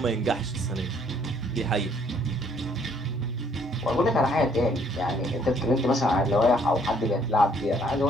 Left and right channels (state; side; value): normal; both; correlation 0.64